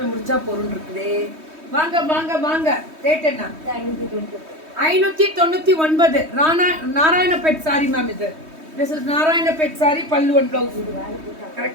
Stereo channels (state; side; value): late; left; 3.2 ms